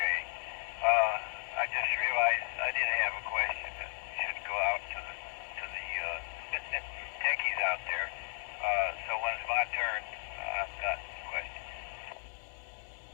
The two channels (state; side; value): silent; right; digital silence